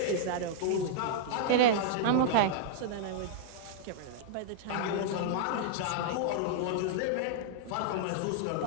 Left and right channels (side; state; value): both; different; correlation -0.02